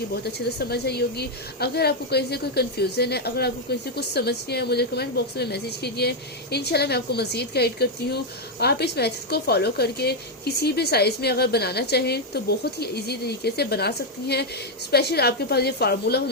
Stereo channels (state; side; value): normal; both; correlation 0.01